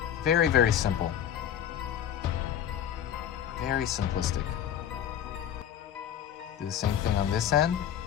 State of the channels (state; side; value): quieter; right; 9.8 dB